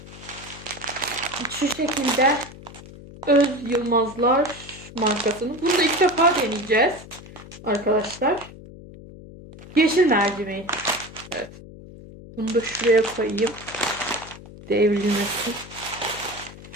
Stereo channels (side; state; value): left; noise; hum, 17 dB below the sound